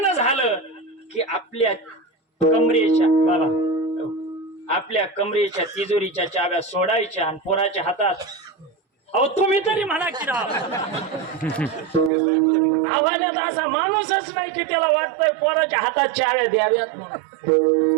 झालं की आपल्या कमरेच्या, बाबा, आपल्या कमरेच्या तिजोरीच्या चाव्या सोडायच्या आणि पोराच्या हातात, अहो तुम्ही तरी म्हणा की राव, आव्हानात असा माणूसच नाही की त्याला वाटतंय पोराच्या हातात चाव्या द्याव्यात म्हणून.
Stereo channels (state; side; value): drops out; left; at 12.1 s